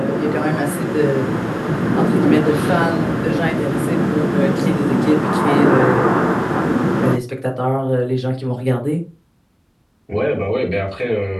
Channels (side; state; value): both; identical; correlation 1.00